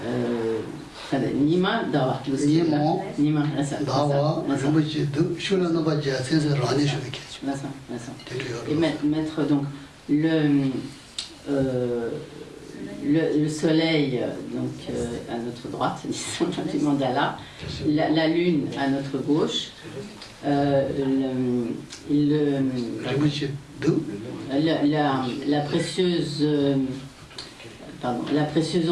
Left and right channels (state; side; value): identical; both; correlation 1.00